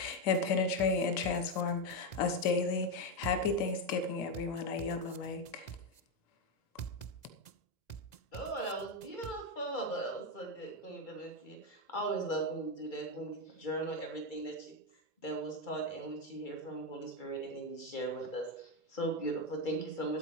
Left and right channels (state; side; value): late; right; 2.4 ms